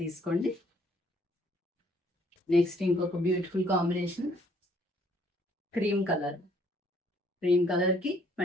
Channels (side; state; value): both; normal; correlation 0.64